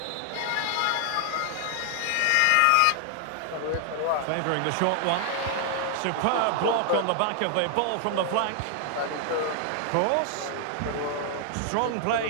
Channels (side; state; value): both; different; correlation 0.00